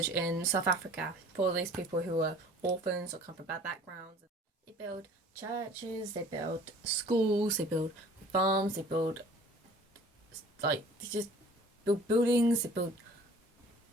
in South Africa for these people who are orphans or come from bad backgrounds. They build churches, they build schools, they build farms, they build they just build buildings, they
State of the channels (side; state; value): both; normal; correlation 0.48